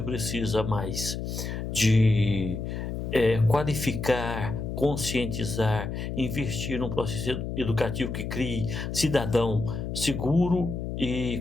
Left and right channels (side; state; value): left; noise; hum, 4 dB below the sound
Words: precisa mais de qualificar, conscientizar, investir num processo educativo que crie cidadão seguro